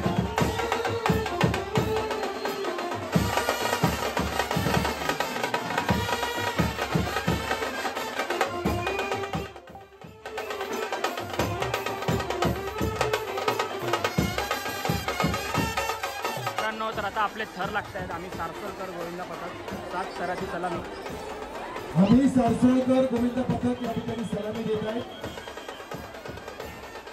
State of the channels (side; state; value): both; identical; correlation 1.00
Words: तर आता आपले थर लागत आहेत. आम्ही सारसोलकर गोविंदा पथक 7 थराची सलामी. आम्ही सारसोलकर गोविंदा पथक या ठिकाणी सलामी देत आहे.